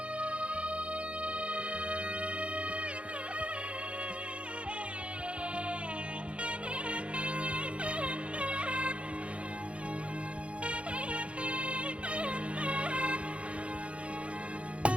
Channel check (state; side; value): late; left; 0.060 ms